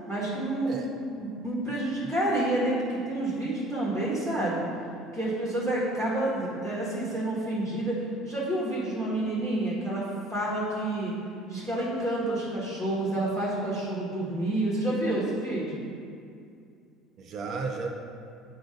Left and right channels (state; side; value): normal; both; correlation 0.53